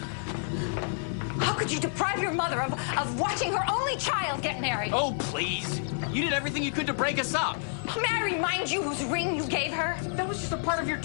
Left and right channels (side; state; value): right; silent; digital silence